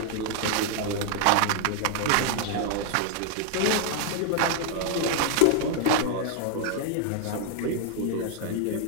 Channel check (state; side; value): different; both; correlation 0.00